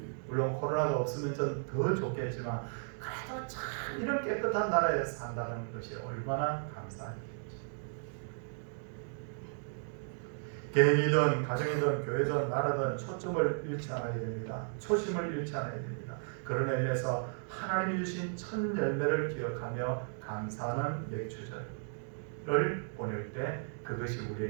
물론 코로나가 없으면 좀 더 좋겠지만 그래도 참 이런 깨끗한 나라에 산다는 것이 얼마나 감사한 일인지. 개인이든 가정이든 교회든 나라든 초점을 잃지 않아야 됩니다. 초심을 잃지 않아야 됩니다. 그런 의미에서 하나님이 주신 첫 열매를 기억하며 감사하는 맥주절을 보낼 때 그것이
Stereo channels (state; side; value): silent; left; digital silence